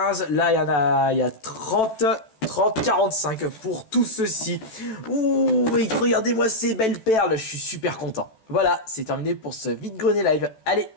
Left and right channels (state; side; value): late; right; 14 ms